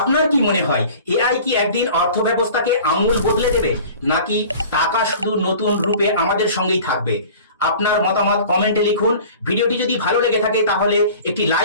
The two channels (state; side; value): inverted; both; correlation -0.43